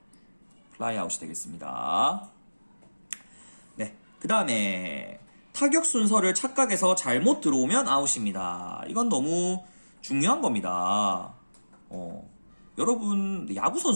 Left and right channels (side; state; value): both; inverted; correlation -1.00